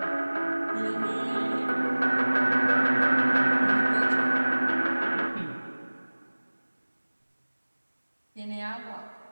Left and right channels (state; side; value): inverted; both; correlation -1.00